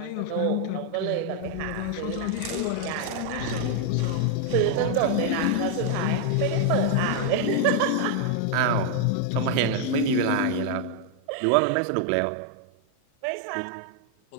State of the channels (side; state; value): both; different; correlation 0.00